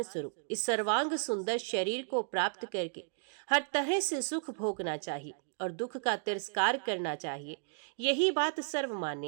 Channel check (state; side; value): silent; left; digital silence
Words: स्वरूप इस सर्वांग सुंदर शरीर को प्राप्त करके हर तरह से सुख भोगना चाहिए और दुख का तिरस्कार करना चाहिए। यही बात